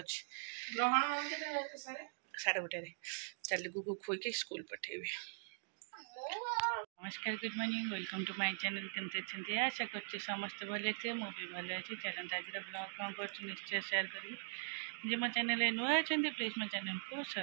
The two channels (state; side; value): silent; left; digital silence